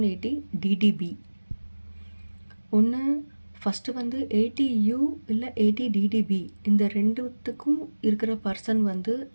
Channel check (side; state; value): both; inverted; correlation -1.00